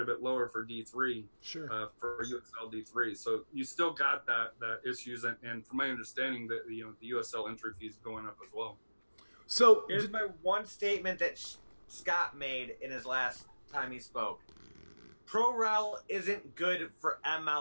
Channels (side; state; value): both; inverted; correlation -1.00